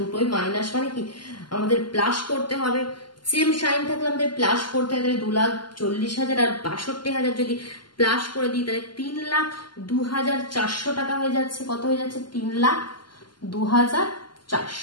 দুটোই মাইনাস, মানে কি আমাদের প্লাস করতে হবে। সেম সাইন থাকলে আমাদের প্লাস করতে হবে, তাহলে 2,40,000 আর 62,000 যদি প্লাস করে দিই তাহলে 3,02,400 টাকা হয়ে যাচ্ছে। কত হয়ে যাচ্ছে,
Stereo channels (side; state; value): right; late; 0.71 ms